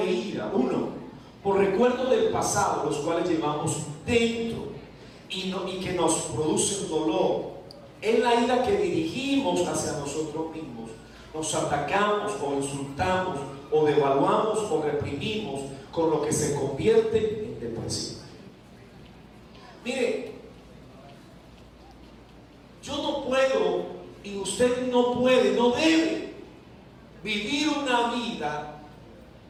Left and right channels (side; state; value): both; identical; correlation 1.00